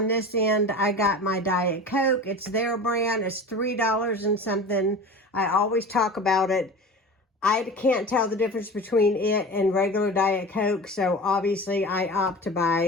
this end, I got my Diet Coke. It's their brand. It's $3 and something. I always talk about it. I can't tell the difference between it and regular Diet Coke, so obviously I opt to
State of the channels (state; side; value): normal; both; correlation 0.34